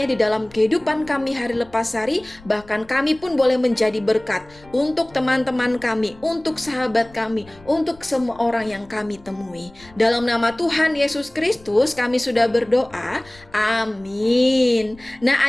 di dalam kehidupan kami hari lepas hari, bahkan kami pun boleh menjadi berkat untuk teman-teman kami, untuk sahabat kami, untuk semua orang yang kami temui. Dalam nama Tuhan Yesus Kristus kami sudah berdoa. Amin. Nah,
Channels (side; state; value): left; noise; rumble, 24 dB below the sound